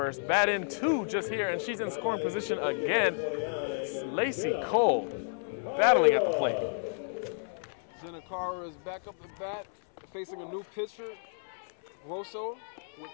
batted in 2 just here, and she's in scoring position again. Lacey Cole battling at the plate. Jenna Carr is back up at bat, facing a new pitcher, Grosso, with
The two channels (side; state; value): right; silent; 57 dB below the other